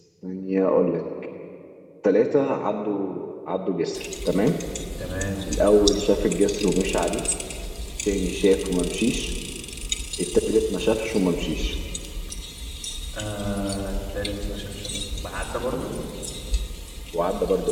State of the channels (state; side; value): identical; both; correlation 1.00